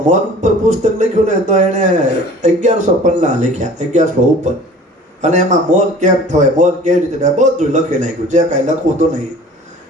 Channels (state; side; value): normal; both; correlation 0.45